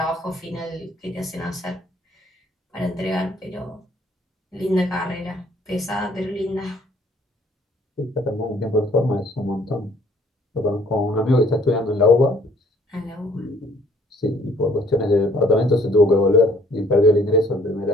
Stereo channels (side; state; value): both; normal; correlation 0.60